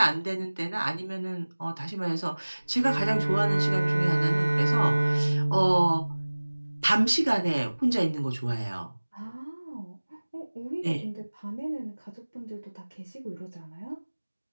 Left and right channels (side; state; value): both; inverted; correlation -1.00